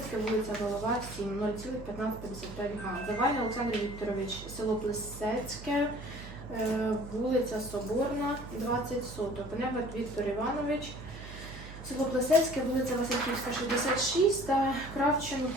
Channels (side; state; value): right; noise; hum, 13 dB below the sound